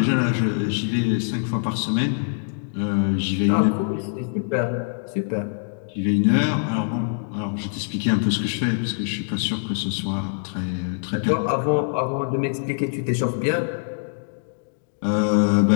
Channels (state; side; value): silent; right; digital silence